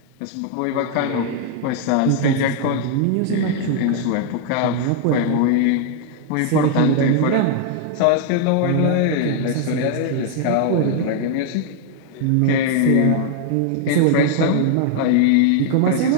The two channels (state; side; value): different; both; correlation 0.00